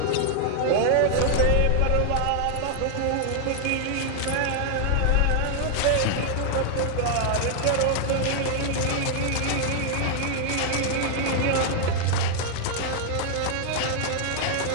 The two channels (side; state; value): both; different; correlation 0.00